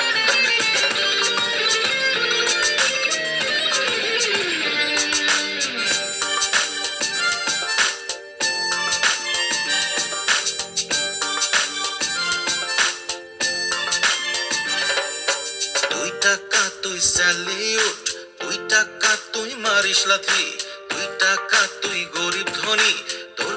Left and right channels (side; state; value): both; identical; correlation 1.00